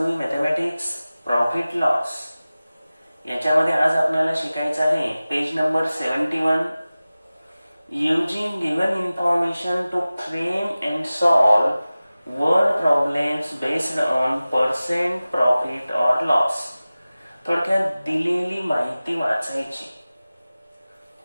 mathematics profit loss याच्यामध्ये आज आपल्याला शिकायचं आहे page number 71. Using given information to frame and solve word problems based on percent profit or loss. थोडक्यात दिलेली माहिती वाचायची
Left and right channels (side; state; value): both; inverted; correlation -0.97